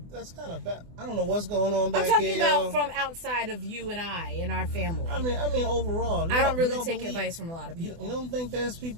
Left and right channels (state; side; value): late; left; 24 ms